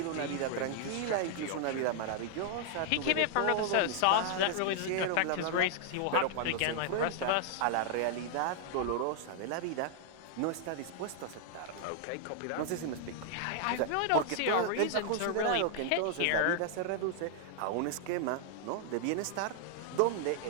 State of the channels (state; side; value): different; both; correlation 0.00